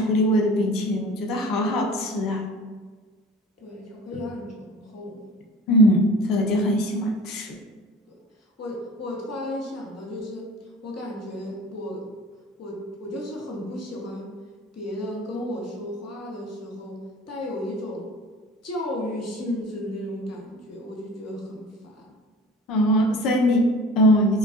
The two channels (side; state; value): both; normal; correlation 0.42